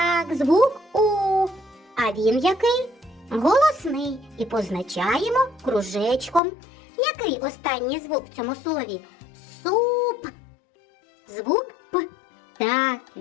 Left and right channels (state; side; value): drops out; right; at 6.4 s